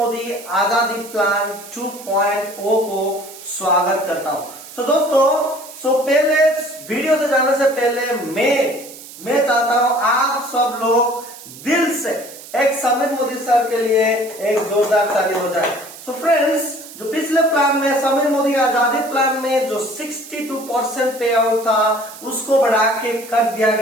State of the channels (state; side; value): noise; right; hiss, 16 dB below the sound